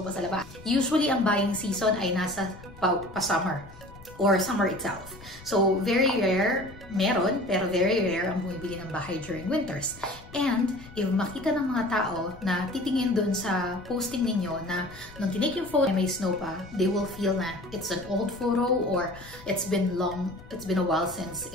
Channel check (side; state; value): left; noise; rumble, 19 dB below the sound